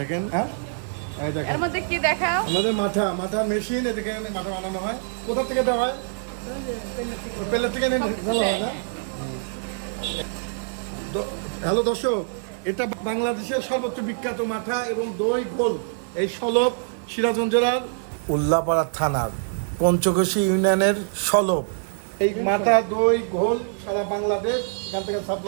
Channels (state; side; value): silent; left; 59 dB below the other